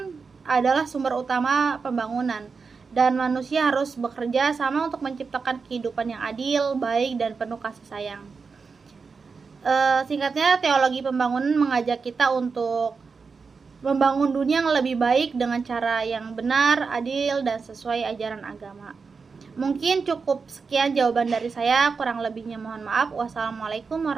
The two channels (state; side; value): quieter; left; 5.0 dB